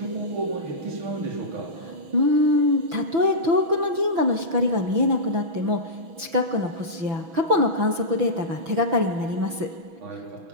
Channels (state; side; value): late; left; 6.0 ms